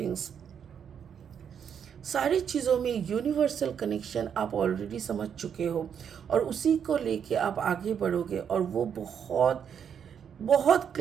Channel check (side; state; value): left; quieter; 7.9 dB